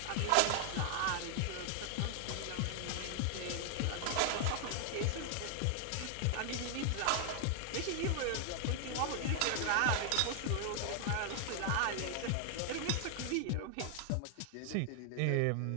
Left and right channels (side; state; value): both; different; correlation 0.00